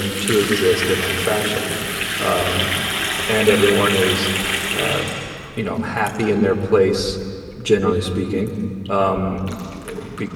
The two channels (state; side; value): identical; both; correlation 1.00